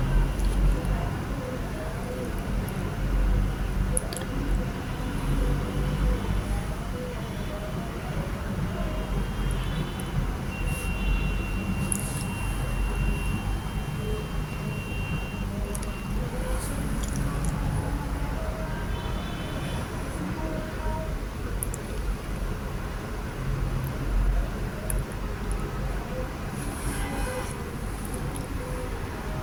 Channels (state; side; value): identical; both; correlation 1.00